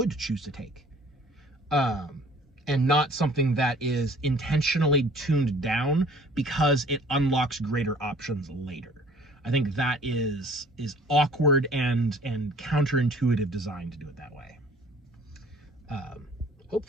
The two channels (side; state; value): both; normal; correlation 0.53